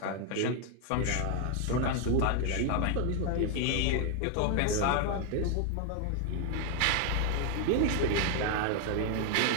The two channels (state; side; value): different; both; correlation 0.00